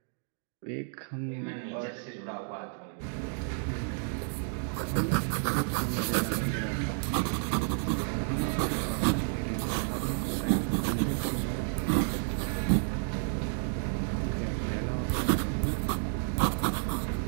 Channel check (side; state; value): left; silent; 57 dB below the other